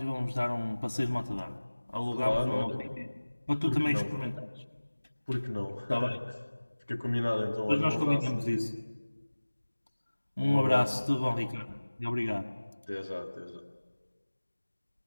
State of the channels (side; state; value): both; inverted; correlation -1.00